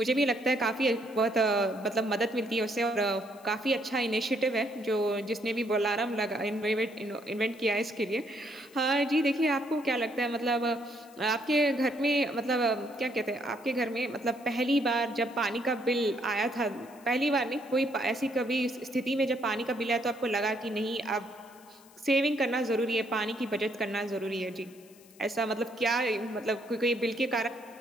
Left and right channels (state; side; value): noise; left; hiss, 26 dB below the sound